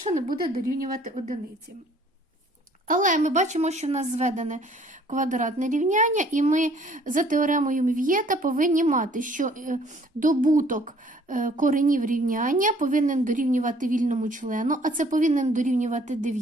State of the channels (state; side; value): normal; both; correlation 0.58